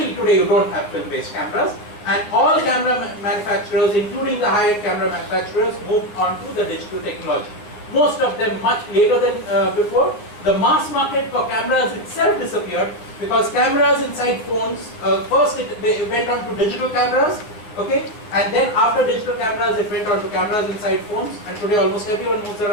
today you don't have film-based cameras, and all camera manufacturers, including the high-end camera manufacturers, moved on to the digital technology. Most of them much later than before. The mass market for cameras itself disappeared because cameras inside phones, first it went on to digital cameras, okay, and then after digital cameras it went on to cameras inside phones, and today almost everyone moves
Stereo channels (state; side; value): late; right; 9.5 ms